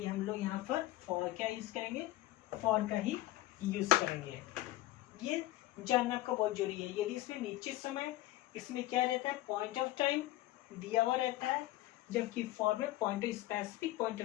हम लोग यहाँ पर 4 क्या यूज करेंगे, 4 का ही यूज करेंगे। ये जानना आपका बहुत जरूरी है। यदि इसमें नीचे समय, इसमें क्या रहता है, पॉइंट ऑफ टाइम दिया हुआ रहता है, जबकि 4 में स्पेसिफिक पॉइंट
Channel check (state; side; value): quieter; right; 16.6 dB